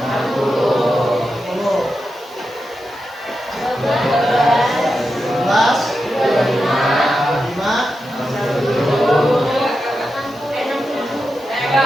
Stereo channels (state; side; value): noise; left; hiss, 30 dB below the sound